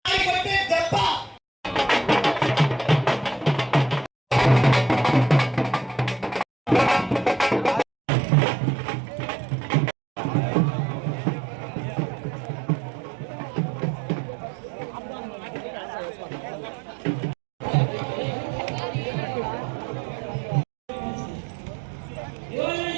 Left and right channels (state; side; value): drops out; left; at 7.9 s